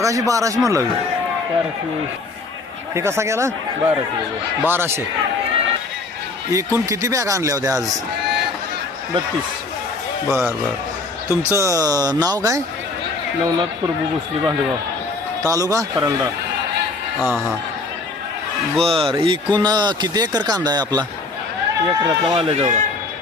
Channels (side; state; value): right; quieter; 3.6 dB